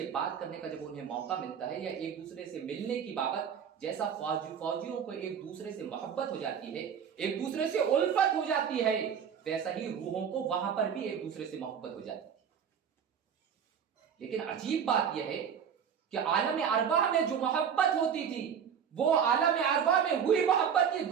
بات کرنے کا جب انہیں موقع ملتا ہے یا ایک دوسرے سے ملنے کی بابت، جیسا فوجیوں کو ایک دوسرے سے محبت ہو جاتی ہے، ایک دوسرے سے الفت ہو جاتی ہے، ویسا ہی روحوں کو وہاں پر بھی ایک دوسرے سے محبت ہو جاتی ہے۔ لیکن عجیب بات یہ ہے کہ عالم ارواح میں جو محبت ہوتی تھی وہ عالم ارواح میں ہوئی محبت یہ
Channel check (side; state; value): left; quieter; 7.8 dB